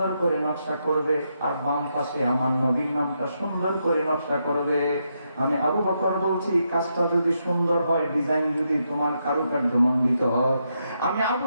করে নকশা করবে, আর বাম পাশে আমার নবীর নামটা সুন্দর করে নকশা করবে। আমি আবু বকর বলছি, কাজটা যদি সুন্দর হয়, ডিজাইন যদি তোমার কারুকার্য মণ্ডিত হয়, আমি আবু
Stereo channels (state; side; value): inverted; both; correlation -0.81